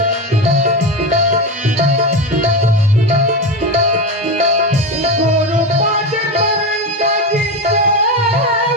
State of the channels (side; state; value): both; normal; correlation 0.18